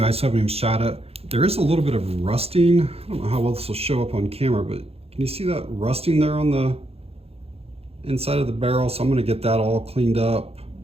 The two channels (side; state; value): left; late; 0.29 ms